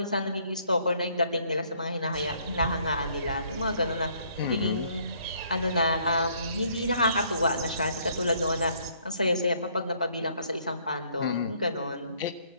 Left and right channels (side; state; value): both; inverted; correlation -0.65